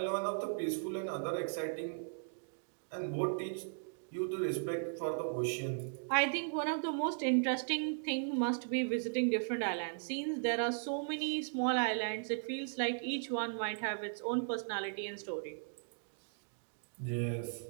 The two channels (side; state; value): left; silent; digital silence